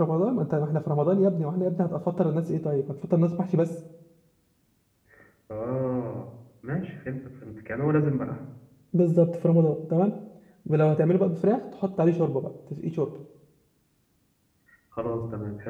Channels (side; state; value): both; identical; correlation 1.00